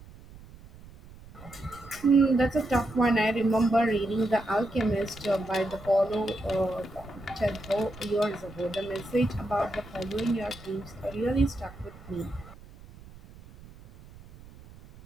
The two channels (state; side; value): noise; right; rumble, 19 dB below the sound